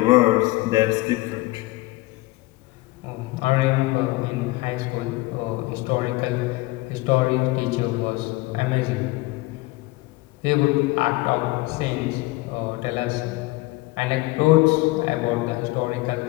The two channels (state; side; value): quieter; right; 21.0 dB